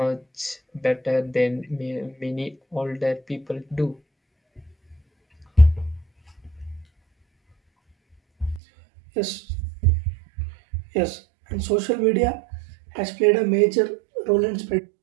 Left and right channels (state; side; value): drops out; left; at 8.6 s